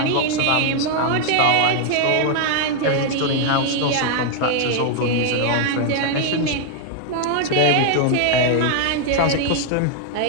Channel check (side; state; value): both; different; correlation 0.00